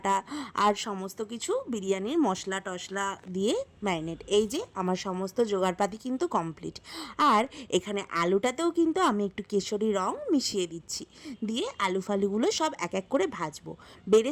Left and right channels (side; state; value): both; identical; correlation 1.00